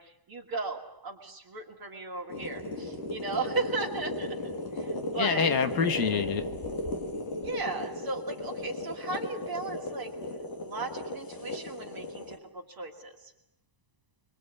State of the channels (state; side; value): late; left; 1.0 ms